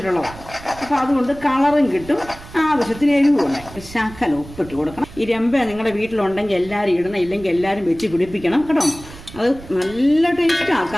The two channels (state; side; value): noise; right; rumble, 17 dB below the sound